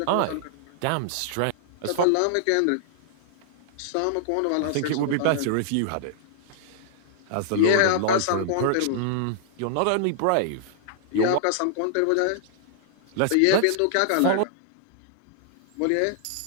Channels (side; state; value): both; different; correlation -0.01